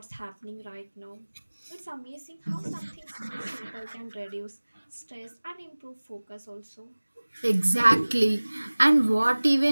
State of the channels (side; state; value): both; inverted; correlation -1.00